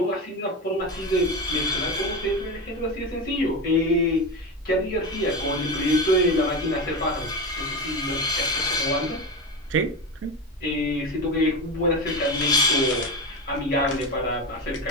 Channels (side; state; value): both; normal; correlation 0.20